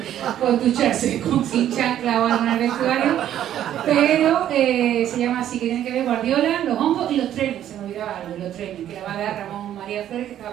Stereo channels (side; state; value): left; quieter; 11.2 dB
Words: con ducharse con sin chancla o algo en el vestuario, pero se llama así, que tiene que ver Guardiola, los hongos y los trenes. Se me olvidaba algo, los trenes, que la va a dar Ramón María Flores, que